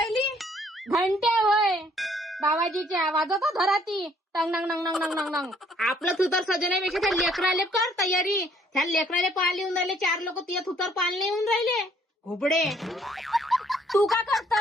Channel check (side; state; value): both; normal; correlation 0.63